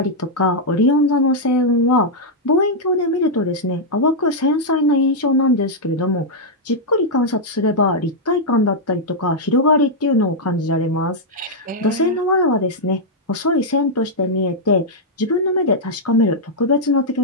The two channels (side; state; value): both; normal; correlation -0.05